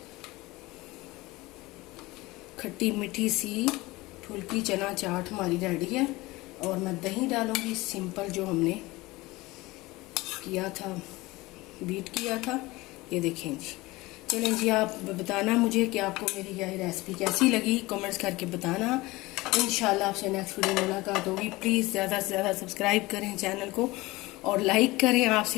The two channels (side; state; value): right; quieter; 20.7 dB